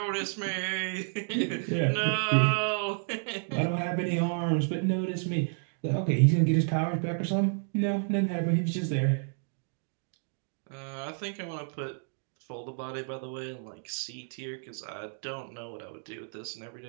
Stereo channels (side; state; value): left; silent; 57 dB below the other